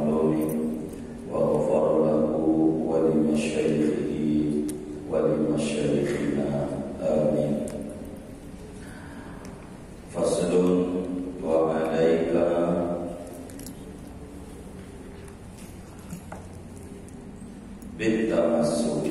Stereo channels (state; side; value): identical; both; correlation 1.00